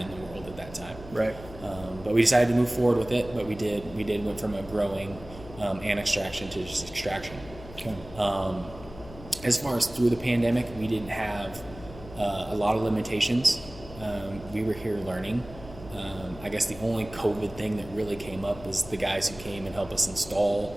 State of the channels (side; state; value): left; noise; hum, 16 dB below the sound